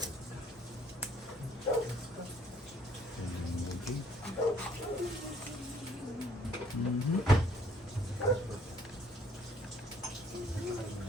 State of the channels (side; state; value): both; normal; correlation 0.63